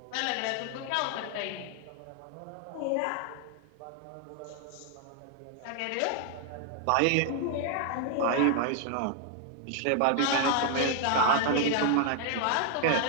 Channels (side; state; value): both; different; correlation 0.00